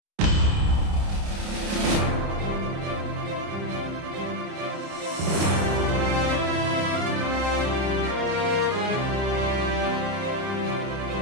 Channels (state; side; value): late; left; 30 ms